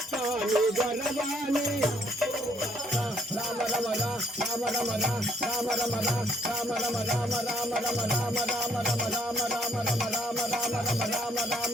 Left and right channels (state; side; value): normal; both; correlation 0.67